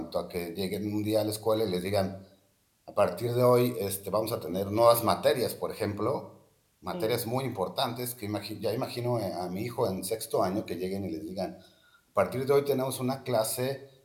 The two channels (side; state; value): both; identical; correlation 1.00